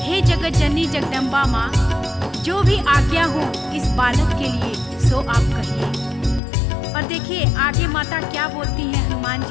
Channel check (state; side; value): drops out; right; at 6.4 s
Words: हे जगत जननी जगदम्बा माँ, जो भी आज्ञा हो इस बालक के लिए सो आप कहिए। और देखिए आगे माता क्या बोलती हैं हनुमान